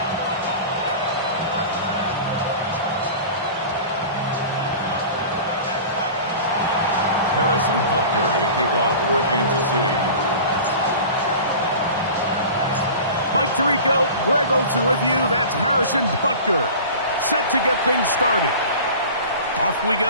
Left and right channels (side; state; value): both; inverted; correlation -0.37